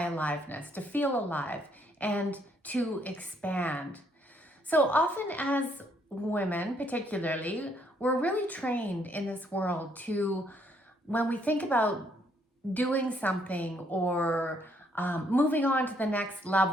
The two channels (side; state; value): both; normal; correlation 0.70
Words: aliveness, to feel alive, and to expand. So often as women, particularly, we're really trained in this world to, when we think about doing something or moving on to the next